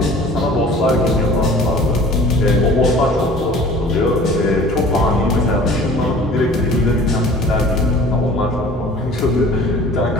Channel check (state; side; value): normal; both; correlation 0.46